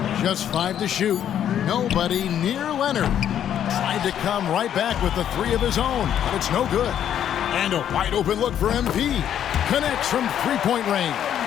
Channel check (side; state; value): right; quieter; 10.0 dB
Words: Just 5 to shoot. Nobody near Leonard. Tried to come right back with the 3 of his own, but it's no good. And a wide open look for MP. Connects from three-point range.